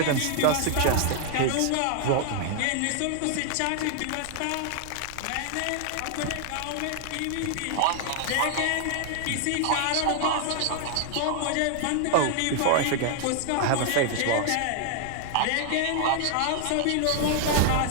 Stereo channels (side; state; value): both; different; correlation 0.00